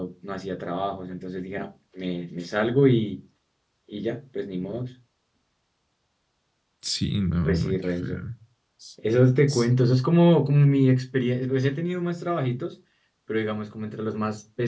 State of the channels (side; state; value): both; identical; correlation 1.00